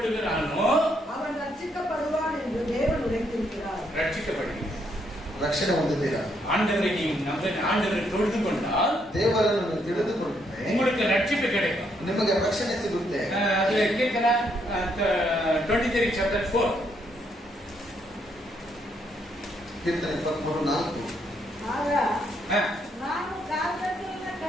அவன் ரட்சிக்கப்படுவான் என்று தேவன் உரைத்திருக்கிறார். ரட்சிக்கப்படுகிறான். ರಕ್ಷಣೆ ಹೊಂದಿದ್ದೀರಾ? ஆண்டவரை நீ ஆண்டவரை தொழுது கொண்டால் ದೇವರನ್ನು ತಿಳಿದುಕೊಂಡ್ರೆ உங்களுக்கு ரட்சிப்பு கிடைக்கும், ನಿಮಗೆ ರಕ್ಷಣೆ ಸಿಗುತ್ತೆ. அதுல கீர்த்தன 23 chapter 4. ಕೀರ್ತನೆ 23:4. ಆಗ ನಾನು ಕಾರ್ಗತ್ತಲಿನ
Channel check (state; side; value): normal; both; correlation 0.74